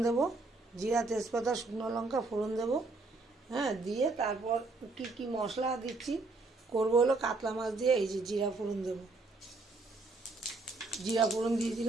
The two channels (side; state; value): left; quieter; 3.5 dB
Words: দেবো, জিরা তেজপাতা শুকনো লঙ্কা ফোড়ন দেবো। দিয়ে তারপর কি মশলা দিচ্ছি করবো হলো কাতলা মাছ দিয়ে এই যে জিরা ফোড়ন দেবো। জিরা ফোড়ন দিয়ে